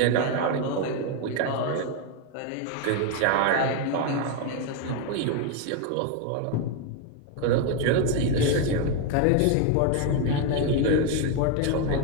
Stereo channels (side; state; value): both; different; correlation 0.01